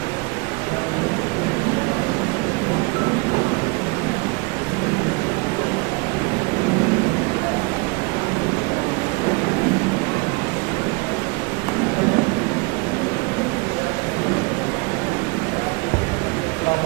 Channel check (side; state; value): left; quieter; 28.2 dB